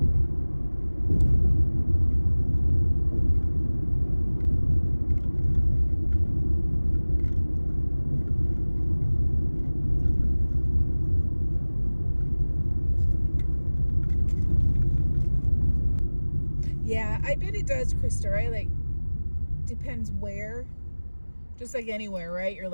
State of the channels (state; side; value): inverted; both; correlation -1.00